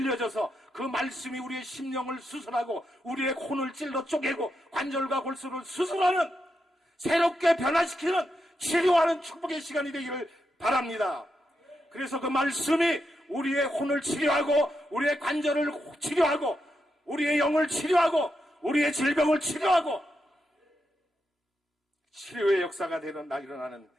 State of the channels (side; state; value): both; normal; correlation 0.85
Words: 그 말씀이 우리의 심령을 수술하고 우리의 혼을 찔러 쪼개고 관절과 골수를 수술하는, 새롭게 변화시키는, 치료하는 축복의 시간이 되기를 바랍니다. 그래서 그 말씀이 우리의 혼을 치료하고 우리의 관절을 치료하고 우리의 영을 치료하고 우리의 질병을 치료하고 치료의 역사가 일어나는